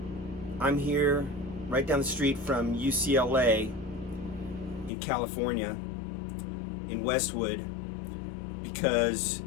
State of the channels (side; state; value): right; drops out; at 4.9 s